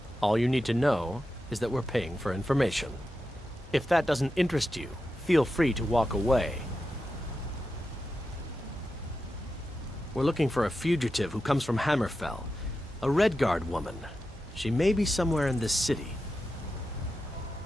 All you need to know is that we're paying for information. If that doesn't interest you, feel free to walk away. We're looking for a fugitive who comes from Hammerfell. A Redguard woman. She may be somewhere in this city.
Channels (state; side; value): normal; both; correlation 0.90